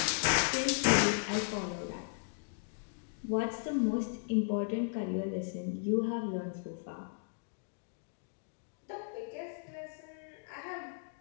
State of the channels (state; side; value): silent; right; digital silence